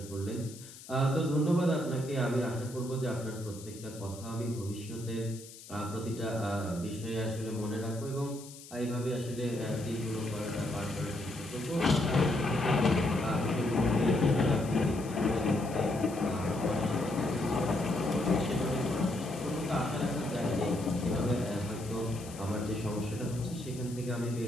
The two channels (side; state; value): left; noise; hiss, 17 dB below the sound